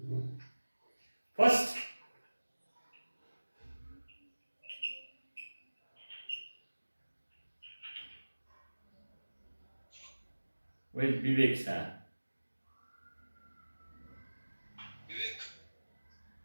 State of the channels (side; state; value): both; inverted; correlation -1.00